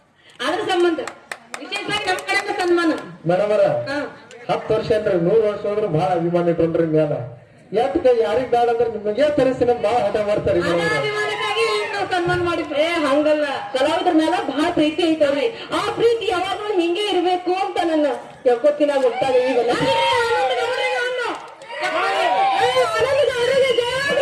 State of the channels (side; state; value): both; identical; correlation 1.00